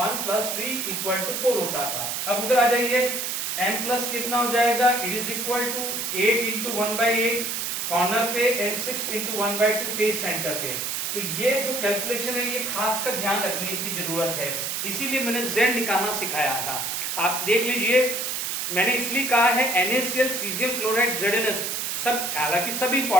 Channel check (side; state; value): right; noise; hiss, 2 dB below the sound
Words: + 3 = 4 होता था। अब उधर आ जाइए, m प्लस कितना हो जाएगा, it is equal to 8 × 1/8 corner पे एंड 6 × 1/2 फेस सेंटर पे। तो ये जो कैलकुलेशन है ये खास कर ध्यान रखने की जरूरत है, इसीलिए मैंने Z निकालना सिखाया था। आप देख लीजिए, मैंने इसलिए कहा है NaCl, सीजियम क्लोराइड, ZnS सब, हालांकि सब